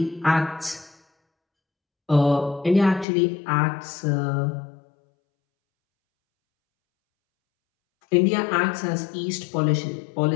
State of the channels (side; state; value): right; drops out; at 3.1 s